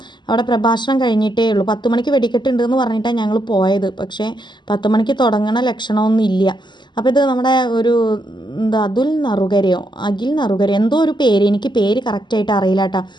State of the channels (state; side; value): late; right; 0.22 ms